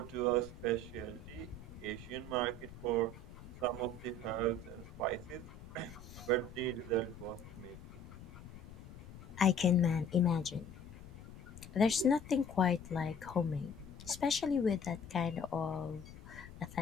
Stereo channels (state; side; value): noise; left; rumble, 15 dB below the sound